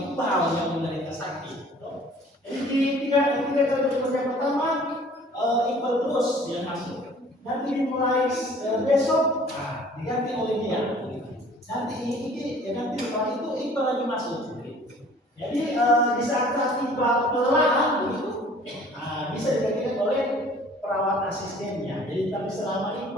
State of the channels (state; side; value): normal; both; correlation 0.51